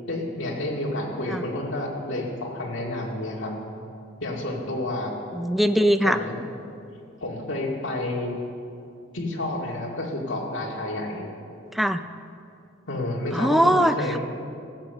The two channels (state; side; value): normal; both; correlation 0.64